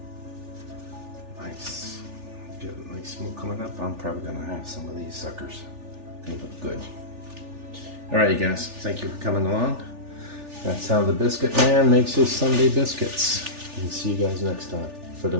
Nice. Get a nice smoke coming up. I'm probably going to have some of these suckers. They look good. Alright you guys, thank you for coming along. That's how the Biscuit Man makes his Sunday biscuits. And see you guys next time. For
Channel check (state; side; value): late; left; 3.4 ms